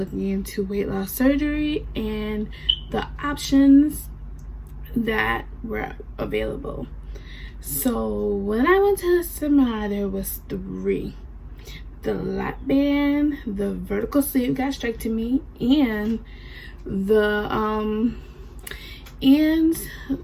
into weight loss surgery and the options that were available. So when I went to the seminar, there was 3: the lap band, the vertical sleeve gastrectomy, and the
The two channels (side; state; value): both; identical; correlation 1.00